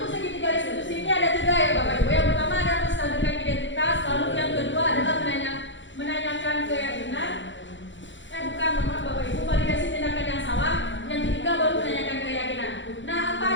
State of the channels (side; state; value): right; late; 0.54 ms